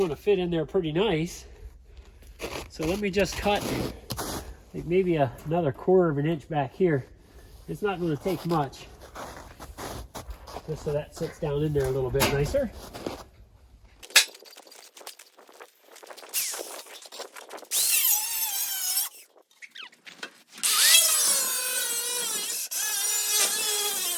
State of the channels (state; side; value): identical; both; correlation 1.00